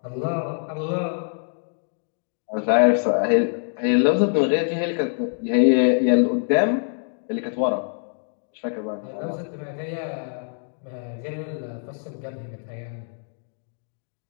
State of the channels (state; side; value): silent; right; digital silence